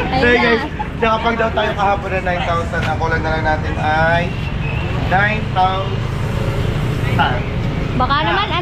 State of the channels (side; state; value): both; identical; correlation 1.00